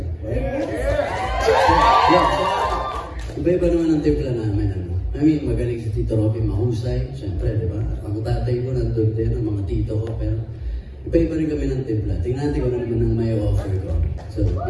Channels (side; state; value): both; identical; correlation 1.00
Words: right? Iba-iba naman ang timpla namin. Ano? I mean, magaling si Tito Robby, mahusay. Siyempre, di ba? Ang tatay ko nandun din, ang mga tito ko. Pero iba-iba rin kami ng timpla. Tingnan natin ko naman ang may offer ko. So,